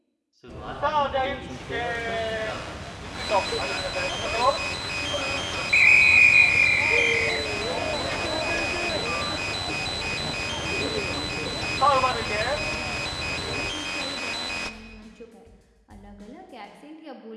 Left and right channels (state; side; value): identical; both; correlation 1.00